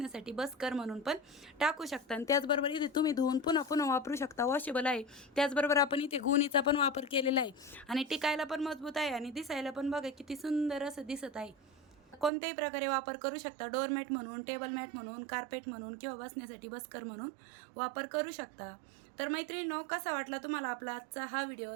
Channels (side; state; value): left; drops out; at 12.3 s